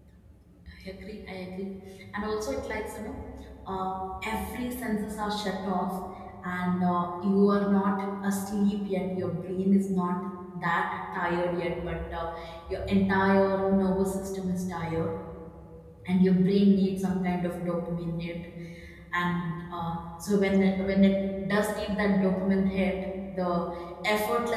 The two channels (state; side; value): identical; both; correlation 1.00